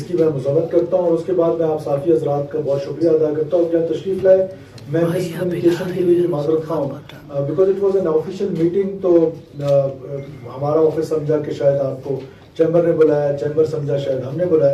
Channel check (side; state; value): both; identical; correlation 1.00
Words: کی میں مذمت کرتا ہوں، اور اس کے بعد میں آپ صحافی حضرات کا بہت شکریہ ادا کرتا ہوں کہ آپ تشریف لائے. میں مس کمیونیکیشن کے لیے بھی معذرت خواہ ہوں، because it was an official meeting. تو ہمارا آفس سمجھا کہ شاید آپ کو چیمبر نے بلایا، چیمبر سمجھا شاید ہم نے